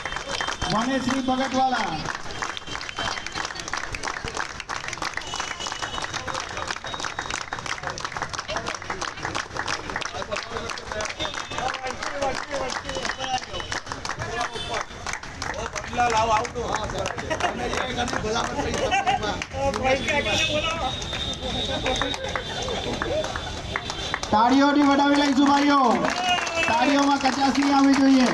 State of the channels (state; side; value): identical; both; correlation 1.00